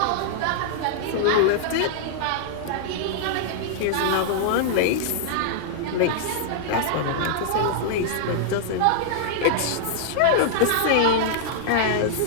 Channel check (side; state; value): both; different; correlation -0.01